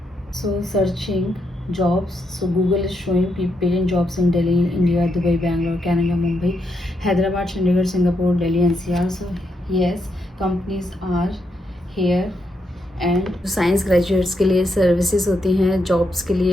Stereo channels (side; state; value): both; normal; correlation 0.80